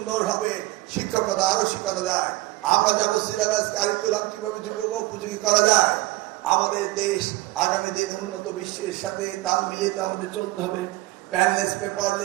শিক্ষকতা আরো শেখানো যায়। আমরা যাব সিলেবাস কারিকুলাম কিভাবে যুবক উপযোগী করা যায়। আমাদের দেশ আগামী দিন উন্নত বিশ্বের সাথে তাল মিলিয়ে তো আমাদের চলতে হবে। প্যানলেস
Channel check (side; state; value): left; quieter; 19.2 dB